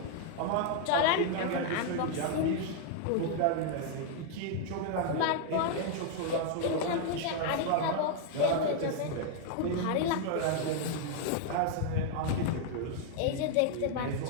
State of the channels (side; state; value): both; different; correlation 0.00